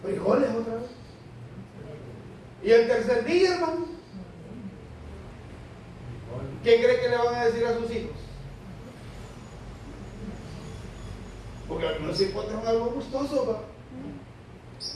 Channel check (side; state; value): both; identical; correlation 1.00